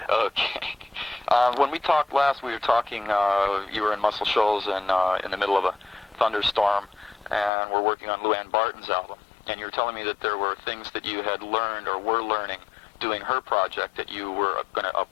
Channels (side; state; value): right; drops out; at 7.5 s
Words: Okay. When we talked last, we were talking, you were in Muscle Shoals and in the middle of a thunderstorm, and we're working on Lou Ann Barton's album. And you were telling me that there were things that you had learned or were learning doing her project that you were going to